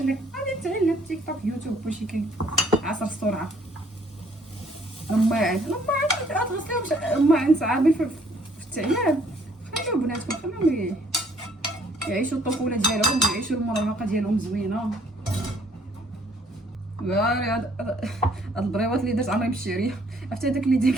غادي تعلم تيك توك يوتيوب كلشي كاين. عصر السرعه. الماعن غتغسليهم الماعن صعابين في التعيان. خليو بناتكم خليهم يعيشوا الطفوله ديالهم ويعيشوا المراهقه ديالهم زوينه. هاد البريوات اللي درت عمري بالشعريه. عرفتي هذاك اللي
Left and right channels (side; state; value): both; normal; correlation 0.63